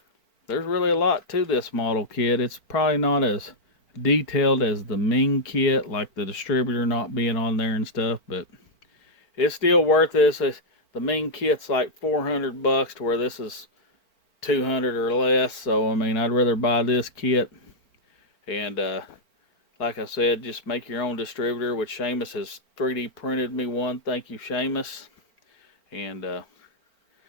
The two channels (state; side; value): late; right; 4.4 ms